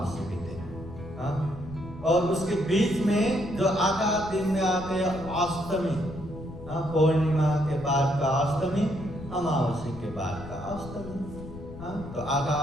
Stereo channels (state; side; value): noise; left; rumble, 14 dB below the sound